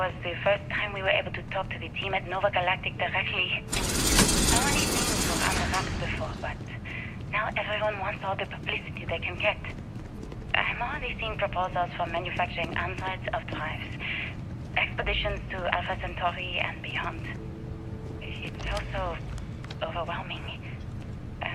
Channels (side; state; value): both; identical; correlation 1.00